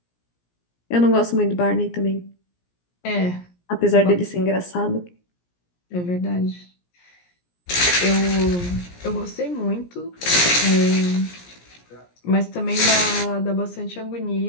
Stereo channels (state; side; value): late; right; 17 ms